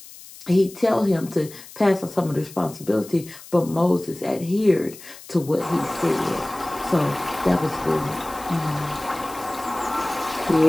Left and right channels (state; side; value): noise; left; hiss, 18 dB below the sound